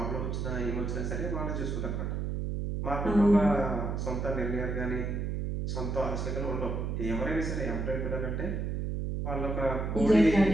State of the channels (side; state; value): right; noise; hum, 2 dB below the sound